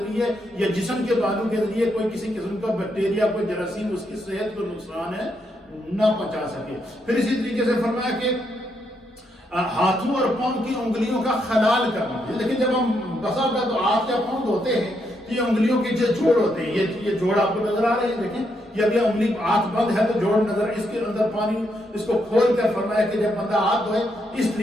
یا جسم کے بالوں کے ذریعے کوئی کسی قسم کا بیکٹیریا, کوئی جراثیم اس کی صحت کو نقصان ہے نہ پہنچا سکے. پھر اسی طریقے سے فرمایا کہ ہاتھوں اور پاؤں کی انگلیوں کا خلال کرنا. لیکن جب ہم بسا ہوتا تو ہاتھ یا پاؤں دھوتے ہیں تو یہ انگلیوں کے جو جوڑ ہوتے ہیں, یہ جوڑ آپ کو نظر آ رہے ہیں, دیکھیں یہ ابھی انگلی ہاتھ بند ہے تو جوڑ نظر, اس کے اندر پانی اس کو کھول کر فرمایا کہ جب بندہ ہاتھ دھوئے اس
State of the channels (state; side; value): normal; both; correlation 0.78